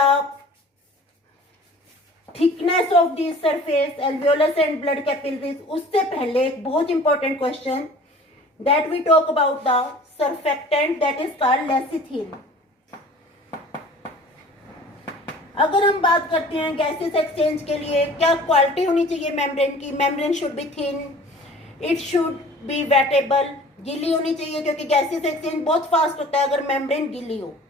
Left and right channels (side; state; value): both; normal; correlation 0.46